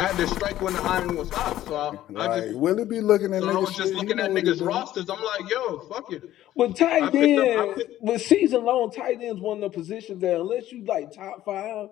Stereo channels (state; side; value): quieter; right; 13.5 dB